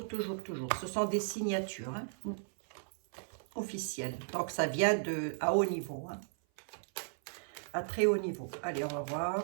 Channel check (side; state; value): left; silent; 54 dB below the other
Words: Ce sont des signatures hein, officielles. Donc, ça vient à haut niveau. Hein, à très haut niveau. Allez, on va